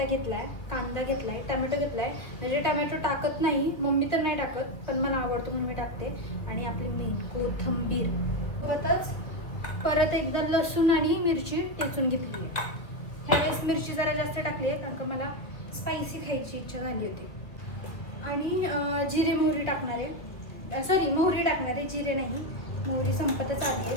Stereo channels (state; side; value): late; right; 1.6 ms